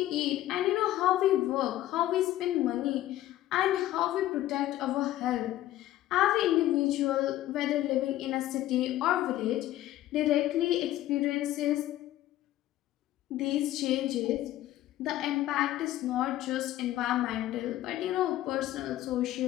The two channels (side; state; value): right; quieter; 14.2 dB